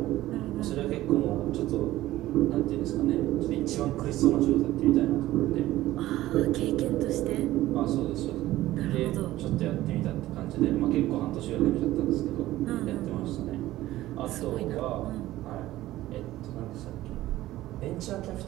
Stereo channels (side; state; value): left; quieter; 15.6 dB